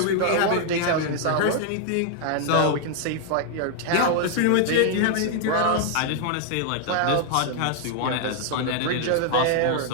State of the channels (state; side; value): different; both; correlation 0.00